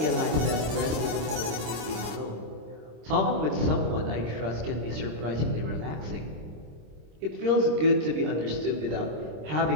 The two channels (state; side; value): late; left; 26 ms